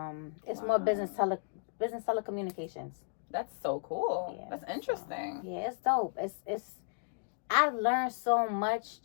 it's more business telecommunications. That's so cool. Yeah, that's interesting. So, yeah, it's dope. It's I learned so much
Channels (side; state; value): right; silent; digital silence